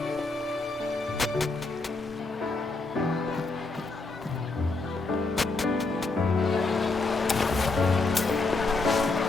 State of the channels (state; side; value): quieter; right; 3.5 dB